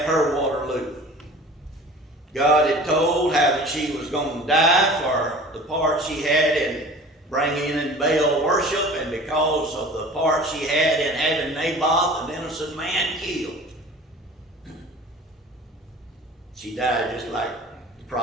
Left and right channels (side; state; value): both; normal; correlation 0.42